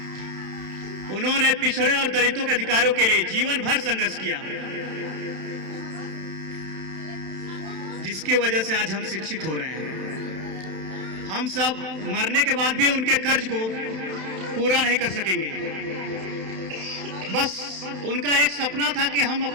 उन्होंने पिछड़े और दलितों के अधिकारों के लिए जीवन भर संघर्ष किया, जिसकी वजह से आज हम शिक्षित हो रहे हैं। हम सब मरने के बाद भी उनके कर्ज को पूरा नहीं कर सकेंगे। बस उनका एक सपना था कि हम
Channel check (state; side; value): late; left; 31 ms